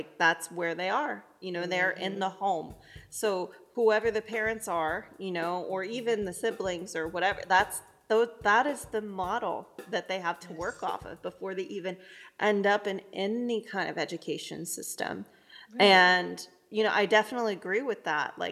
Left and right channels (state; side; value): identical; both; correlation 1.00